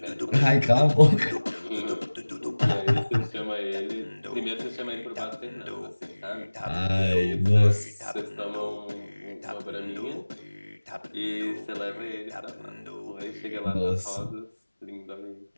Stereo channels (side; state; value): both; inverted; correlation -1.00